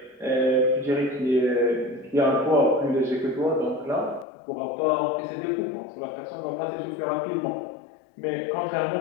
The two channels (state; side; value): drops out; right; at 4.2 s